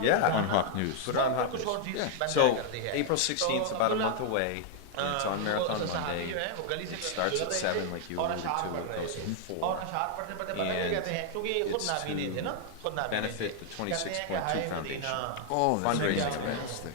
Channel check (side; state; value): both; different; correlation 0.00